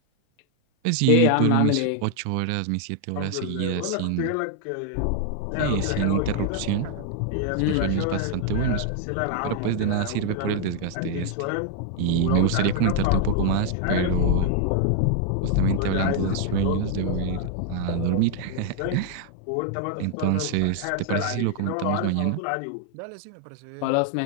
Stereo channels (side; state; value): both; different; correlation 0.00